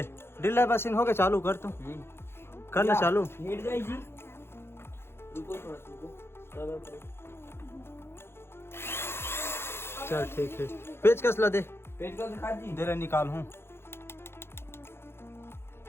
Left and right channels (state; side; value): late; right; 0.12 ms